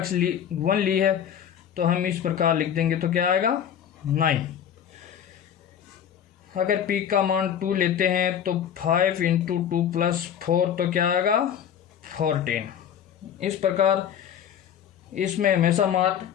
1 ली है तो हम इस प्रकार लिख देंगे, तो क्या आएगा 9। अगर p का मान 2 लेते हैं तो 5 × 2 + 4, तो क्या आएगा 14। इस प्रकार इसमें हमेशा मान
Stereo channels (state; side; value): quieter; right; 9.1 dB